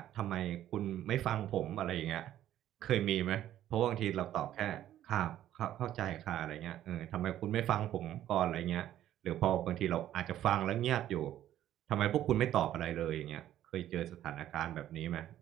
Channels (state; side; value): quieter; left; 12.2 dB